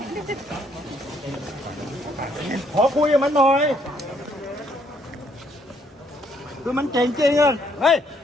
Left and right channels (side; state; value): both; normal; correlation 0.69